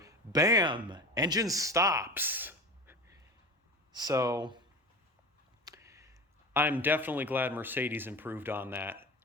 bam, engine stops. So I'm definitely glad Mercedes improved on that.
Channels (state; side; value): normal; both; correlation 0.30